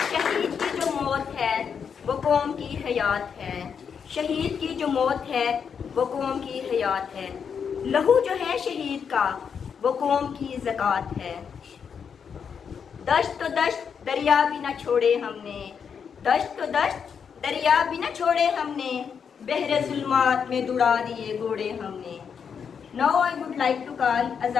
شہید کی جو موت ہے وہ قوم کی حیات ہے، شہید کی جو موت ہے وہ قوم کی حیات ہے، لہو جو ہے شہید کا وہ قوم کی زکوٰۃ ہے۔ دشت تو دشت دریا بھی نہ چھوڑے ہم نے، دشت تو دشت دریا بھی نہ چھوڑے ہم نے، بحر ظلمات میں دوڑا دیے گھوڑے ہم نے۔ Now I would like to call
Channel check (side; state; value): right; quieter; 6.8 dB